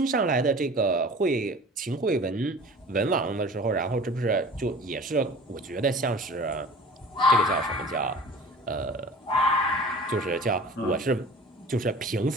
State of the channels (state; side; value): normal; both; correlation 0.42